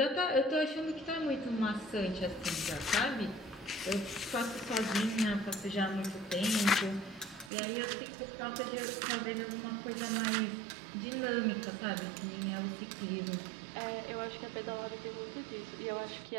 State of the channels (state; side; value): drops out; left; at 7.5 s